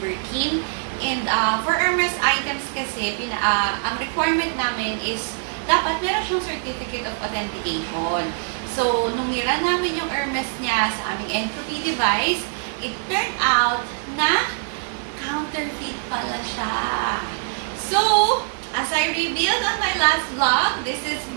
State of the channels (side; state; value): left; silent; digital silence